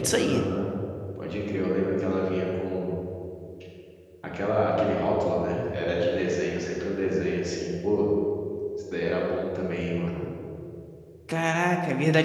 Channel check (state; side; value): identical; both; correlation 1.00